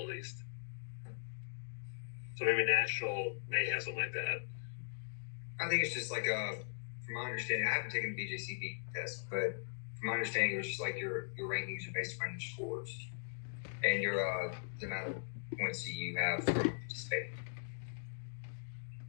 at least. So maybe national may have something like that. I think it's just like from my understanding, I haven't taken the BJCP test, but from my understanding, it's just like your rankings are based on your scores and your the amount of points that you have from participating.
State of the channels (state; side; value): silent; right; digital silence